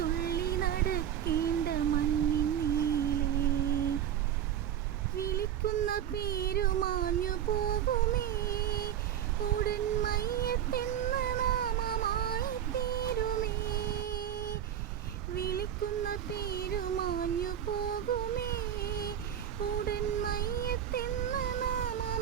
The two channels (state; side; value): quieter; left; 10.2 dB